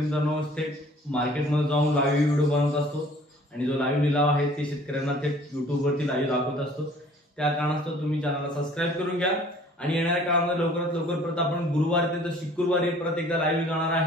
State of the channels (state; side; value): normal; both; correlation 0.53